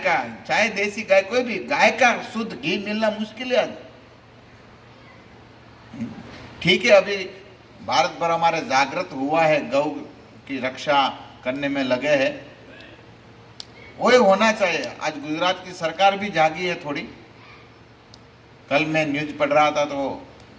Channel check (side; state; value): both; identical; correlation 1.00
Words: चाहे देसी गाय कोई भी, गाय का शुद्ध घी मिलना मुश्किल है। ठीक है, अभी भारत भर हमारे जागृत हुआ है, गौ की रक्षा करने में लगे हैं, वही होना चाहिए। आज गुजरात की सरकार भी जागी है थोड़ी। कल मैं न्यूज पढ़ रहा था तो